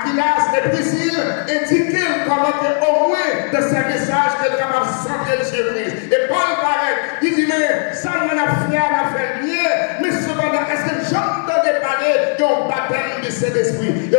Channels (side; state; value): right; silent; 58 dB below the other